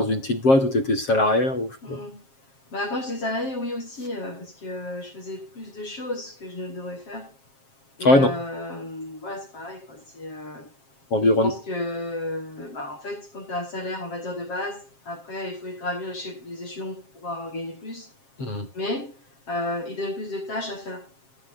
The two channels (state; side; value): late; right; 7.4 ms